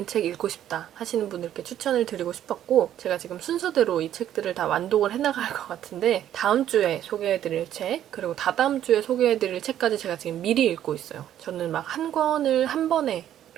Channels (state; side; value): quieter; left; 11.2 dB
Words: 책 읽고 싶다 하시는 분들께 추천을 드리고 싶었고 제가 지금 순서대로 이 책들을 다 완독을 해나갈 것 같은데 다음 주에 소개해드릴 책 그리고 다다음 주에 소개해드릴 책까지 제가 지금 미리 읽고 있어요. 저는 막 한 권을 한 번에